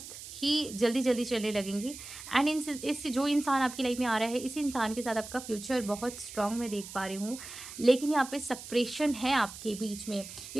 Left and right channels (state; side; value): noise; right; hiss, 12 dB below the sound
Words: ही जल्दी जल्दी चलने लगेंगी। एंड इस जो इंसान आपकी लाइफ में आ रहा है, इसी इंसान के साथ आपका फ्यूचर बहुत स्ट्रांग मैं देख पा रही हूँ, लेकिन यहाँ पे सेपरेशन है आपके बीच में।